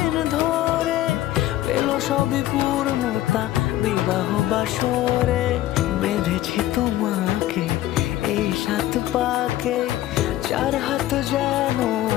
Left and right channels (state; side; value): quieter; right; 14.4 dB